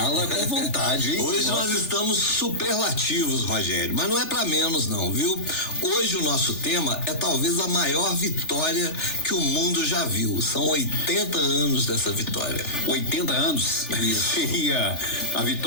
com vontade, hein? Hoje nós estamos superlativos, Rogério, mas não é pra menos não, viu? Hoje o nosso tema é talvez a maior vitória que o mundo já viu. São 80 anos dessa vitória. 80 anos? Isso. Seria a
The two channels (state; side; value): late; right; 3.4 ms